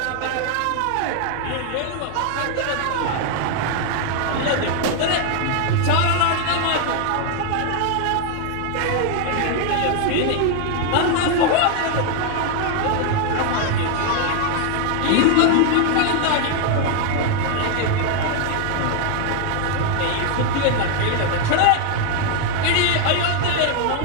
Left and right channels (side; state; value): both; different; correlation 0.00